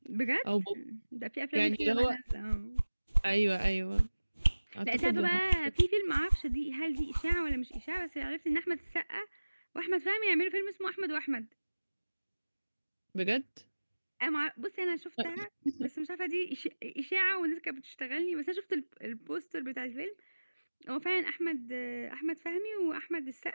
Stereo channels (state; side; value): inverted; both; correlation -1.00